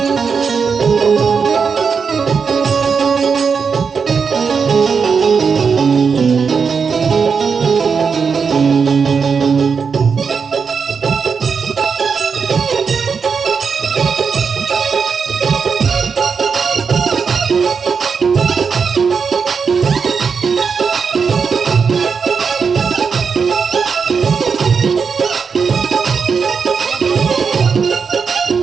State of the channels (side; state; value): left; quieter; 5.8 dB